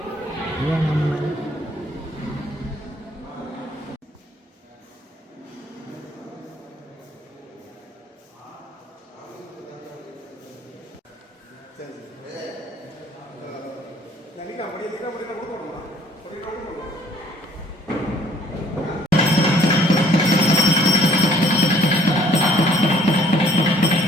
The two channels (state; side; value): normal; both; correlation 0.59